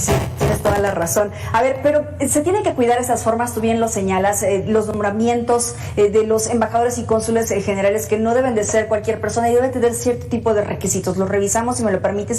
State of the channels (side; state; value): both; identical; correlation 1.00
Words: toda la razón. A ver, pero se tiene que cuidar esas formas, tú bien lo señalas, los nombramientos de los embajadores y cónsules generales, que no deben de ser cualquier persona y deben tener cierto tipo de requisitos. Los revisamos, si me lo permites,